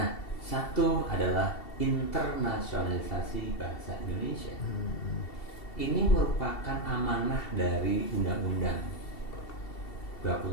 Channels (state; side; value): late; right; 2.7 ms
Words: satu adalah internasionalisasi bahasa Indonesia. Ini merupakan amanah dari Undang-Undang